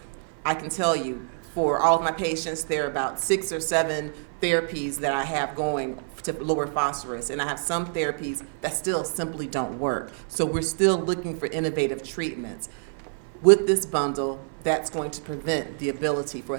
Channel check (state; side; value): silent; left; 55 dB below the other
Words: I can tell you, for all of my patients, there are about 6 or 7 therapies that I have going to lower phosphorus, and I have some therapies that still simply don't work. So we're still looking for innovative treatments. With this bundle, that's going to prevent the ability for